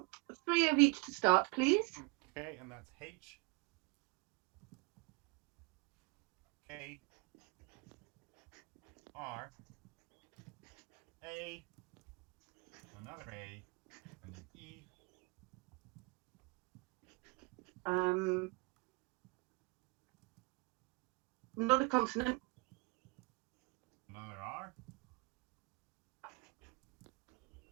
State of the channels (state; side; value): quieter; left; 28.0 dB